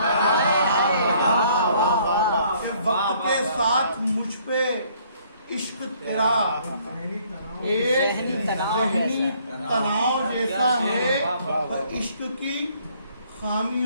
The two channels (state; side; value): inverted; both; correlation -0.63